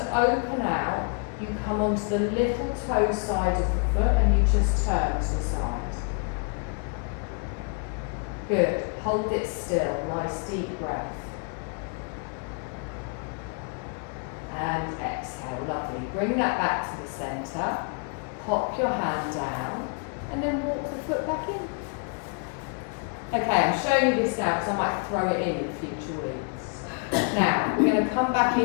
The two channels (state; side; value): quieter; right; 38.5 dB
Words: open out, you come onto the little toe side of the foot and you just turn to the side. Good. Hold it still. Nice deep breath. And exhale. Lovely. Bring that back to the centre. Pop your hand down and then walk the foot back in. Okay, I'm showing you this now because I might throw it in future weeks. Now, we're going to come back